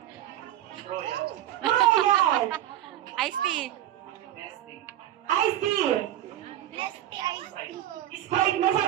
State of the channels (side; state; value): left; quieter; 12.6 dB